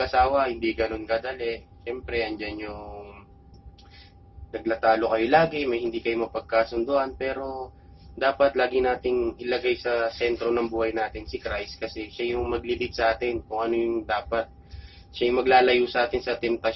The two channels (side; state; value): both; identical; correlation 1.00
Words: hindi ganun kadali. Siyempre, andyan yung naglatalo kayo lagi, may hindi kayo mapagkasunduan, pero dapat lagi nating ilagay sa sentro ng buhay natin si Christ kasi siya yung maglilid sa atin kung ano yung dapat. Siya yung maglalayo sa atin sa